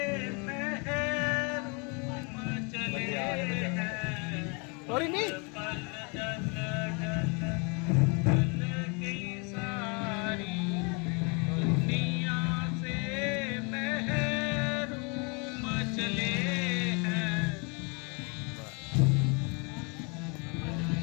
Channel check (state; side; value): quieter; right; 33.2 dB